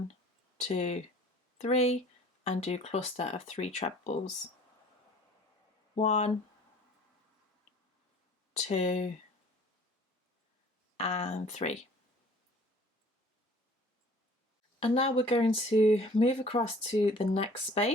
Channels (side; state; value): both; normal; correlation 0.50